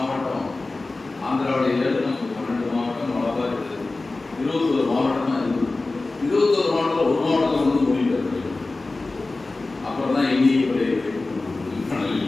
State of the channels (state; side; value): quieter; right; 3.3 dB